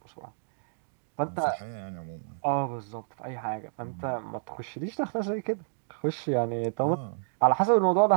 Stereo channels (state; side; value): silent; left; digital silence